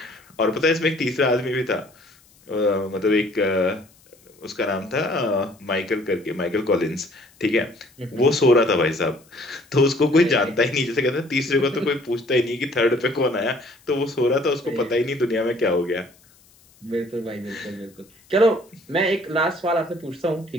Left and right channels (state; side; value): noise; left; hiss, 30 dB below the sound